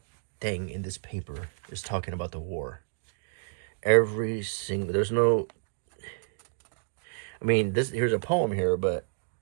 thing in this paper is talking about the war. Every single, there's no, I mean, here's a poem here, but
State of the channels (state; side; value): silent; left; digital silence